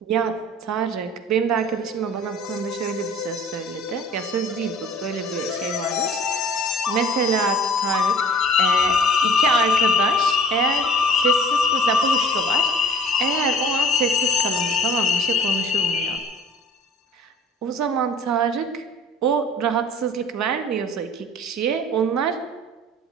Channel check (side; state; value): both; normal; correlation 0.47